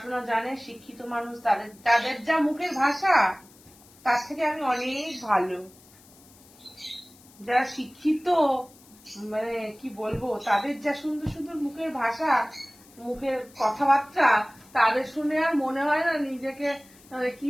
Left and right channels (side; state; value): left; noise; hiss, 25 dB below the sound